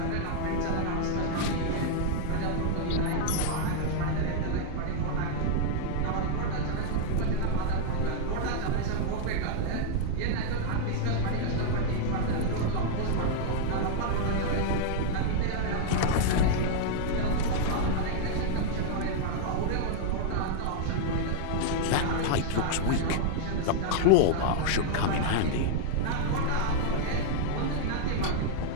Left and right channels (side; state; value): both; different; correlation -0.01